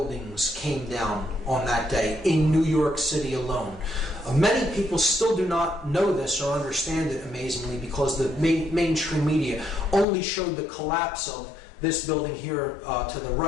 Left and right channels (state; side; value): drops out; right; at 10.1 s